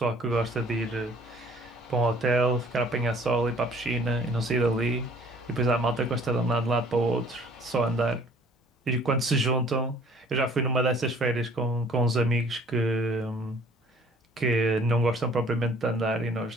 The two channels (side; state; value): both; normal; correlation 0.55